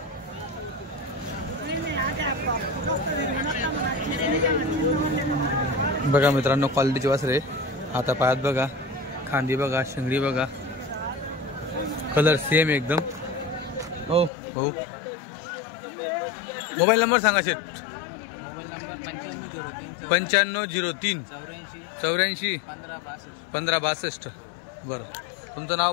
बघा मित्रांनो क्वालिटीची वासरे. आता पायात बघा, खांदी बघा, शिंगडी बघा, कलर सेम एकदम. हो हो. मोबाईल नंबर सांगा शेट. Mobile number 9503 84 1562. बरं, तुमचं नाव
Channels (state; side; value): drops out; right; at 14.3 s